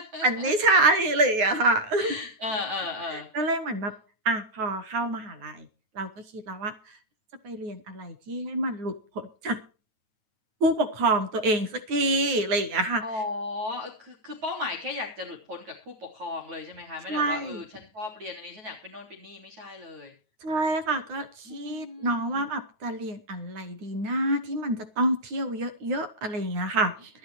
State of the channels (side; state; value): left; late; 9.3 ms